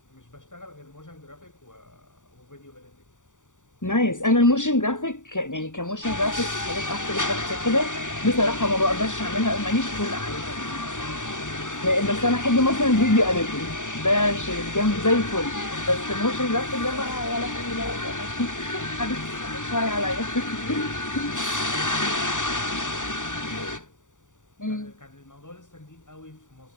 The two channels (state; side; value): late; right; 0.86 ms